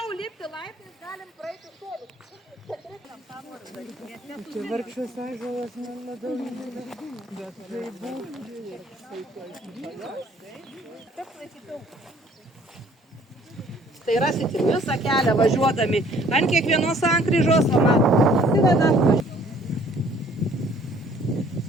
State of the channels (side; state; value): both; normal; correlation 0.57